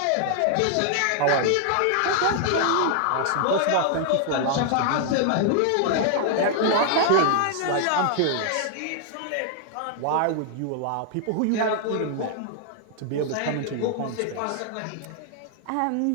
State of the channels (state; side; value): different; both; correlation 0.00